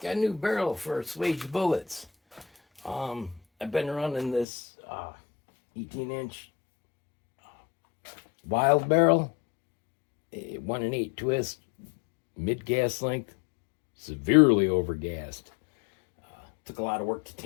got a new barrel for spec'd bullets. I've been running this 18-inch wild barrel, a 1 and 8 twist, mid gas length, severely overgassed. Took a lot of work to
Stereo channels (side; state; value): right; drops out; at 4.5 s